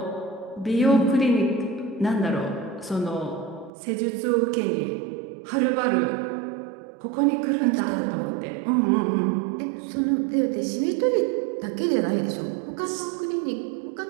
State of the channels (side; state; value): left; drops out; at 3.7 s